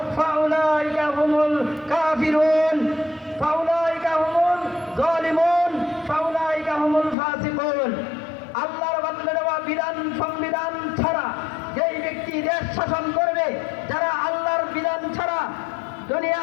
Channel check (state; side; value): drops out; right; at 7.2 s